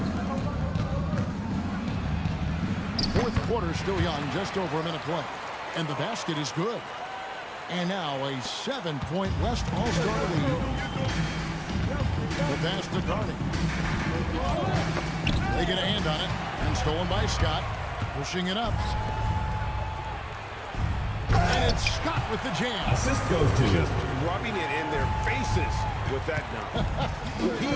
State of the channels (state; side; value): identical; both; correlation 1.00